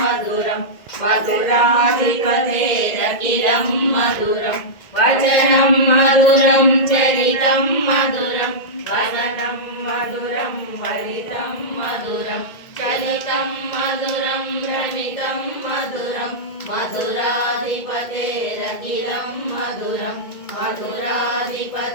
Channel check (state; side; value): late; right; 1.9 ms